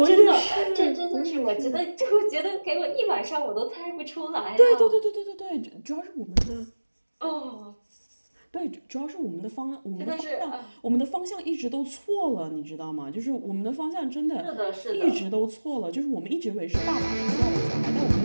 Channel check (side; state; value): both; inverted; correlation -1.00